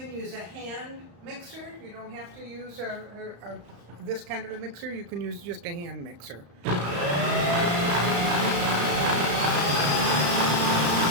use a hand mixer. You don't have to use this kind of a mixer. You can use just a hand mixer.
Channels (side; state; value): left; late; 34 ms